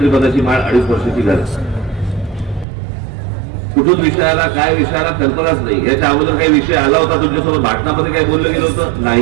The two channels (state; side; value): drops out; left; at 2.7 s